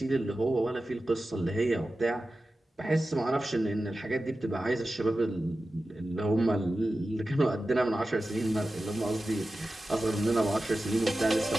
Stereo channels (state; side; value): normal; both; correlation 0.94